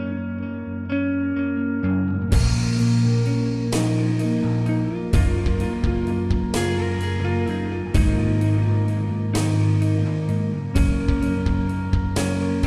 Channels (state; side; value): identical; both; correlation 1.00